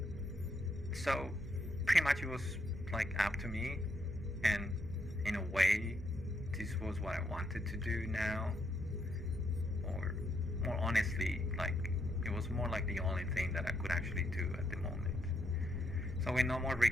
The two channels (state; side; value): normal; both; correlation 0.77